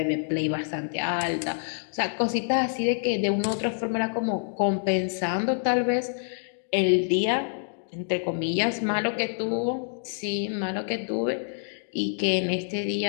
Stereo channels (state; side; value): silent; right; digital silence